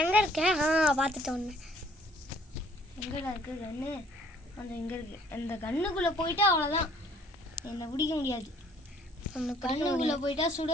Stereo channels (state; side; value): normal; both; correlation 0.59